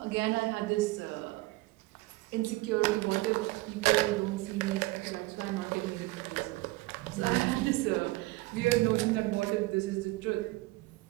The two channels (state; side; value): quieter; left; 21.4 dB